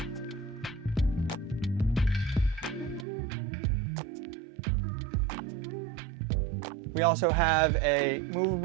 We also have a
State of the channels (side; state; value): left; drops out; at 3.1 s